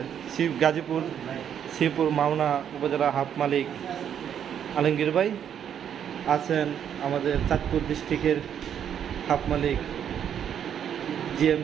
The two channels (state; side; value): quieter; left; 8.9 dB